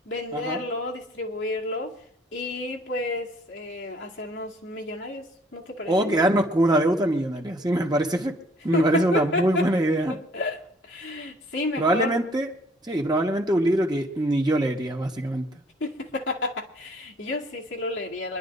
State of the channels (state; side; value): normal; both; correlation 0.59